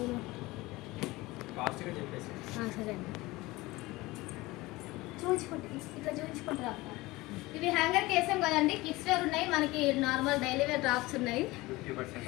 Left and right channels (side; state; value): right; quieter; 20.5 dB